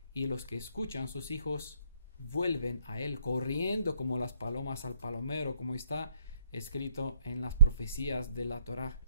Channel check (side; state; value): both; inverted; correlation -0.69